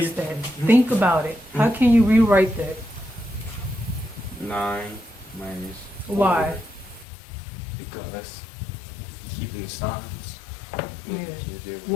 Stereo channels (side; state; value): right; drops out; at 7.1 s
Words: that. Think about it. How can you rewrite that? 9 minus 4. Why? Because keeping signs. Yeah.